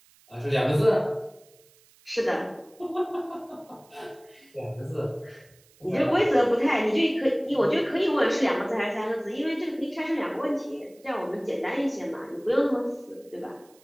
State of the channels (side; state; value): right; noise; hiss, 29 dB below the sound